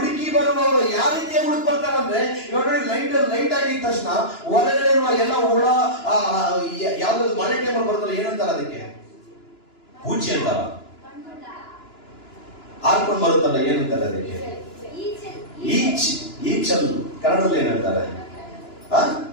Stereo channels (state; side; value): late; right; 2.9 ms